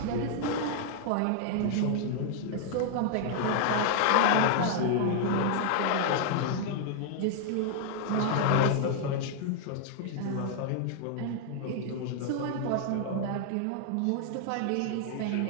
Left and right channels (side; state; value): both; different; correlation 0.00